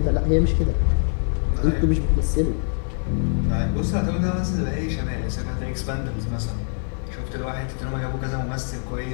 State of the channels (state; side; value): silent; right; 63 dB below the other